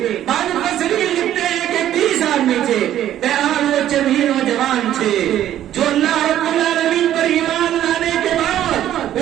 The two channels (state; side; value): quieter; left; 11.9 dB